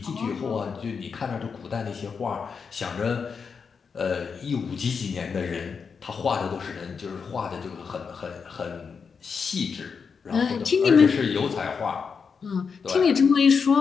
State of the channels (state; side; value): quieter; right; 5.8 dB